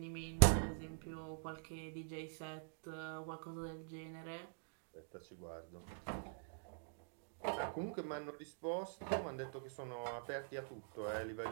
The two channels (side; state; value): left; silent; digital silence